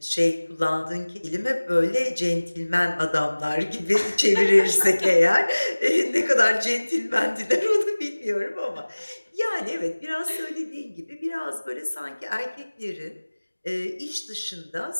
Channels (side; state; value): both; inverted; correlation -1.00